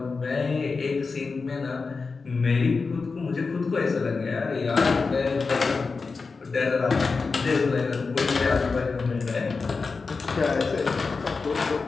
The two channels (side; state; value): right; quieter; 4.4 dB